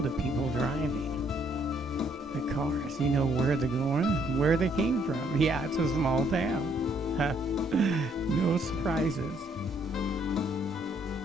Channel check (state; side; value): normal; both; correlation 0.68